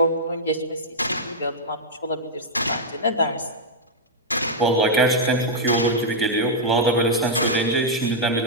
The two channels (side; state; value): both; normal; correlation -0.06